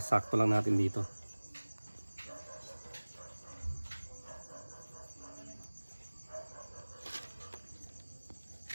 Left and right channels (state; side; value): inverted; both; correlation -1.00